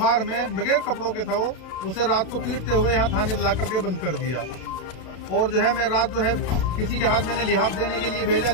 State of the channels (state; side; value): late; right; 33 ms